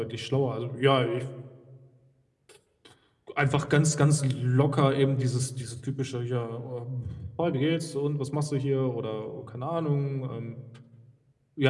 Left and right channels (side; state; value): both; identical; correlation 1.00